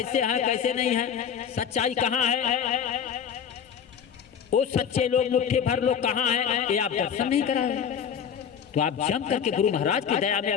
है कैसे नहीं है, सच्चाई कहाँ है, वो सच्चे लोग मुट्ठी भर लोग कहाँ है, ये आप दर्शन नहीं कराए। तो आप जम करके गुरु महाराज की दया में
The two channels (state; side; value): quieter; right; 7.8 dB